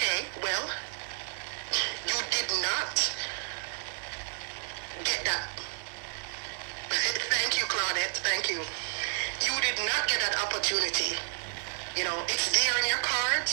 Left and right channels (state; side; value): silent; left; digital silence